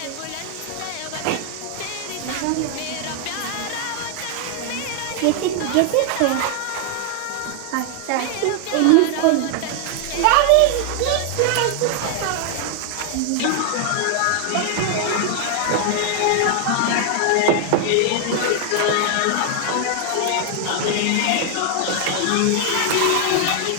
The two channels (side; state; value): both; different; correlation 0.00